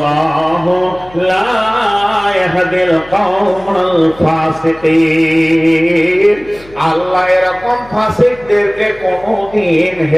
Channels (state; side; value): noise; left; hum, 24 dB below the sound